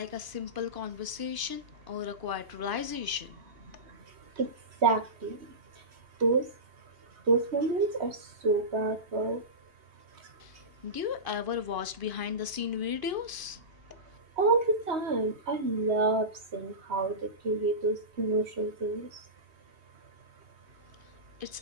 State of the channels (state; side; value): late; left; 2.5 ms